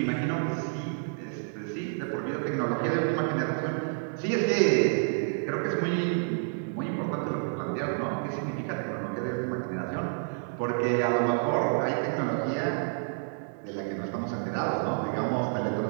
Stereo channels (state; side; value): silent; left; 58 dB below the other